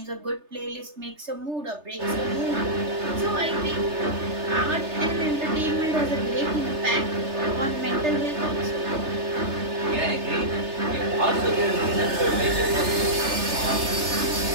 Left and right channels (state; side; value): late; left; 3.3 ms